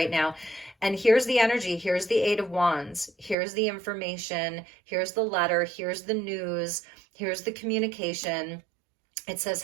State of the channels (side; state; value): left; drops out; at 3.4 s